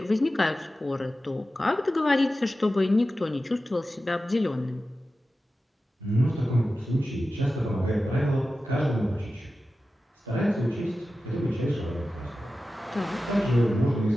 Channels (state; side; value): normal; both; correlation 0.93